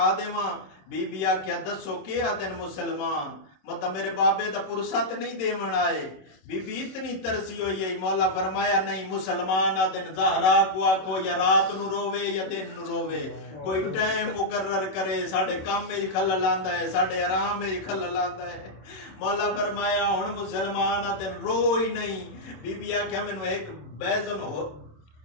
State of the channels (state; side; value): late; right; 27 ms